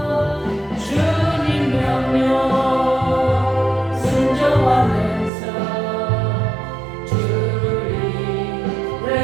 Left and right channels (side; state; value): left; drops out; at 5.3 s